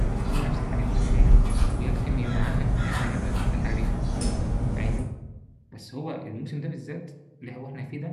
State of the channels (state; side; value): identical; both; correlation 1.00